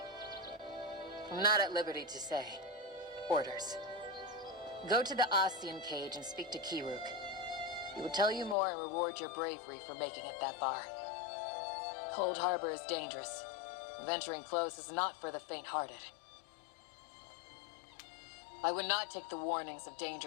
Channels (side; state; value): right; drops out; at 8.6 s